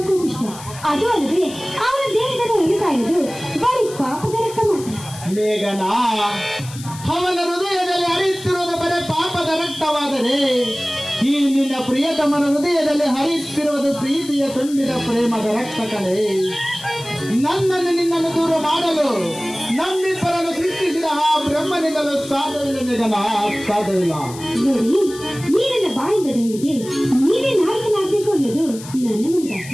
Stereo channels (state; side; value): noise; left; hiss, 16 dB below the sound